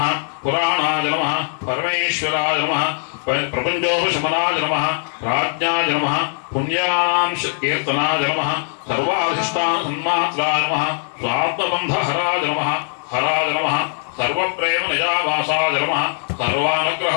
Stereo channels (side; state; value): right; silent; 59 dB below the other